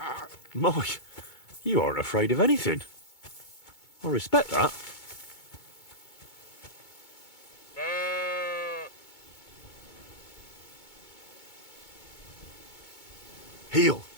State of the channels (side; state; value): right; late; 2.2 ms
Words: Mike, you aren't afraid of anything. I respect that. Heel.